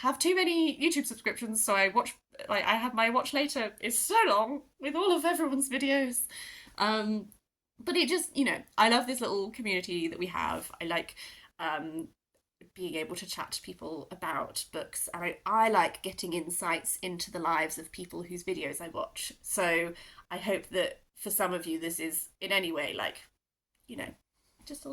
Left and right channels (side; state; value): both; identical; correlation 1.00